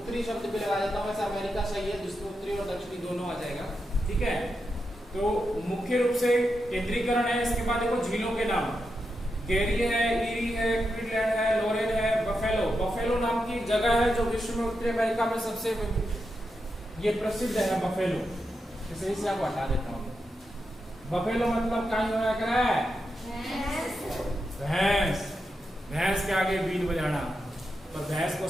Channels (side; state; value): both; normal; correlation 0.87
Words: शब्द भी लगा देता हूं, वैसे अमेरिका सही है, जिसमें उत्तरी और दक्षिणी दोनों आ जाएगा। ठीक है, तो मुख्य रूप से केंद्रीकरण है। इसके बाद देखो झीलों के नाम, गेरी है, ईरी है, क्विडलैंड है, लोरेन है, बफेलो। बफेलो नाम की जगह है जो विश्व में उत्तरी अमेरिका में सबसे ये प्रसिद्ध है, बफेलो। इसे से आपको हटा देता हूँ। बफेलो मतलब क्या होना कर रहा है? भैंस। भैंस के आगे बीन बजाना, पर भैंस को